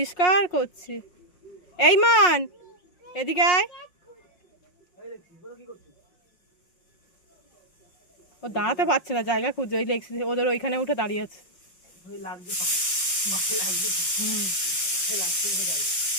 করছি। এই মান, এদিকে আয়। ও দাঁড়াতে পারছে না, জায়গা খুঁজছে। ওই ওদের ওইখানে উঠে দাঁড়িয়ে আছে।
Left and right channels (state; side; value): late; right; 5.6 ms